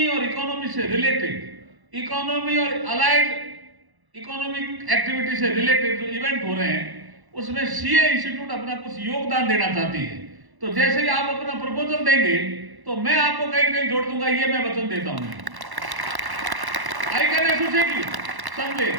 और इकोनॉमी से रिलेटेड, इकोनॉमी और अलाइड इकोनॉमिक एक्टिविटी से रिलेटेड जो इवेंट हो रहे हैं, उसमें सीए इंस्टीट्यूट अपना कुछ योगदान देना चाहती है। तो जैसे ही आप अपना प्रपोजल देंगे, तो मैं आपको कहीं ना कहीं जोड़ दूंगा, ये मैं वचन देता हूं। I can associate you someway.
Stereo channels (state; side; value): late; left; 1.1 ms